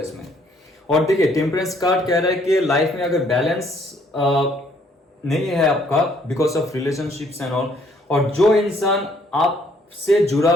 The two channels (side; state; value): both; normal; correlation 0.65